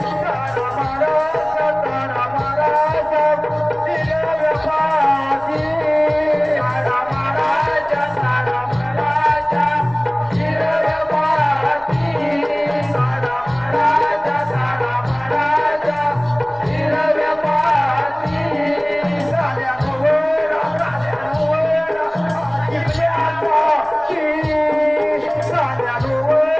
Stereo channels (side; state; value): left; noise; rumble, 27 dB below the sound